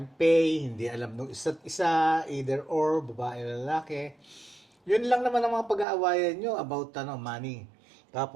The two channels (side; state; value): left; drops out; at 5.9 s